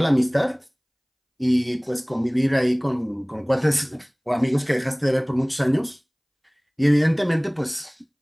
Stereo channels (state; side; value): identical; both; correlation 1.00